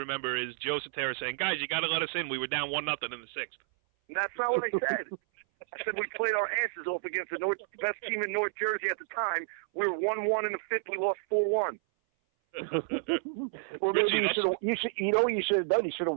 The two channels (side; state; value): left; silent; 57 dB below the other